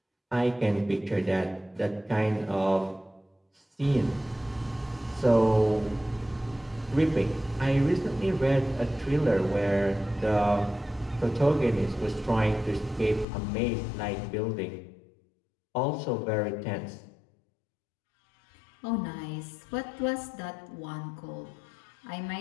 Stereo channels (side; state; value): right; drops out; at 13.2 s